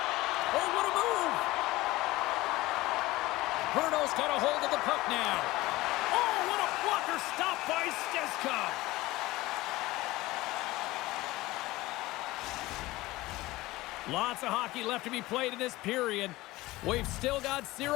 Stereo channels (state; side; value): quieter; right; 19.0 dB